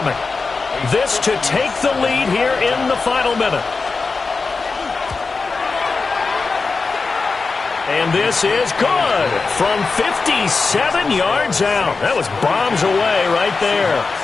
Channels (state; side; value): quieter; right; 4.3 dB